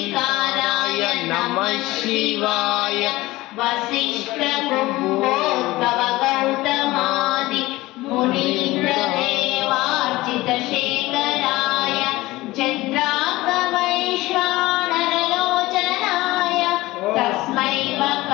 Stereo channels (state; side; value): quieter; right; 18.9 dB